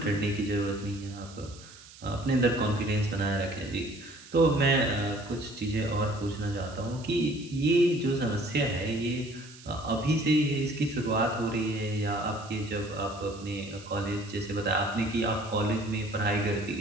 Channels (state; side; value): noise; right; hiss, 20 dB below the sound